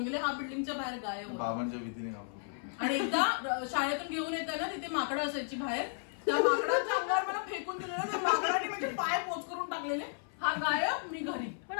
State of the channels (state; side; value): silent; right; 55 dB below the other